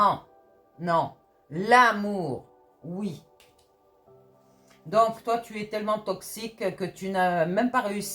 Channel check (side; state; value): both; identical; correlation 1.00